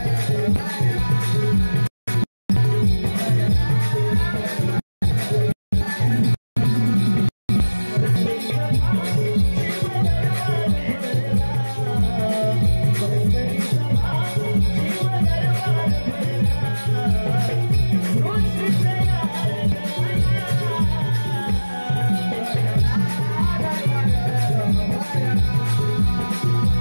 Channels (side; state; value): both; inverted; correlation -1.00